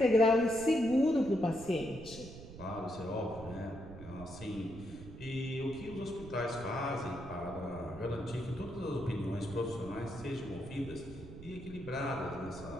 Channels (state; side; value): noise; right; rumble, 14 dB below the sound